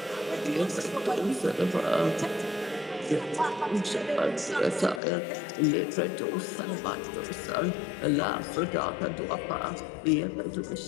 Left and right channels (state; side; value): drops out; right; at 5.0 s